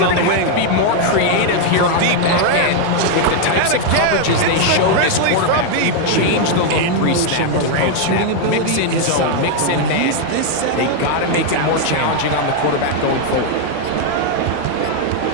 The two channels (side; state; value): both; different; correlation 0.01